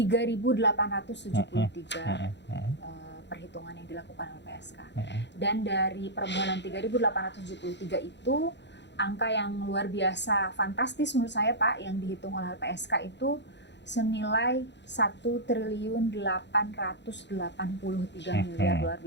perhitungan yang dilakukan LPSK. Dan dari permohonan 3.873 itu, angka yang luar biasa fantastis menurut saya Pak, yang dihitung oleh LPSK itu senilai 1.883 miliar. Luar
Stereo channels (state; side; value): late; right; 0.51 ms